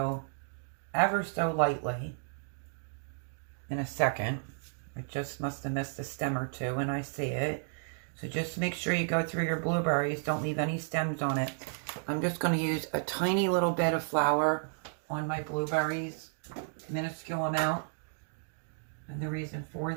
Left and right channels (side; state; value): left; silent; digital silence